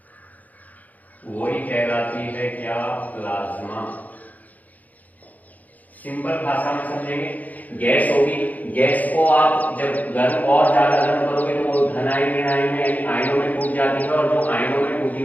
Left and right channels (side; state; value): right; late; 0.079 ms